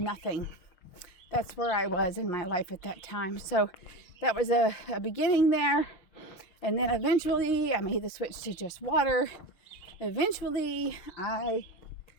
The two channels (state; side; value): late; right; 6.4 ms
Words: nothing. That's where I was in my life at that time. So that was a beginning there. And then eventually I made the switch to just water. Eventually I